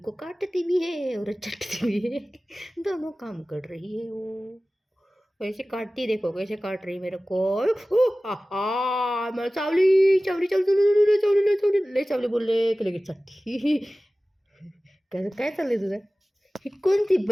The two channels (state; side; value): normal; both; correlation 0.97